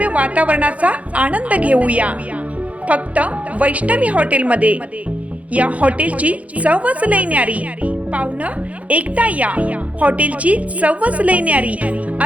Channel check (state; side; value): late; left; 0.067 ms